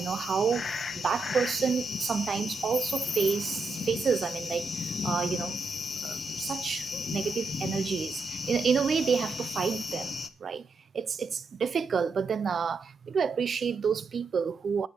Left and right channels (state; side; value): quieter; left; 3.7 dB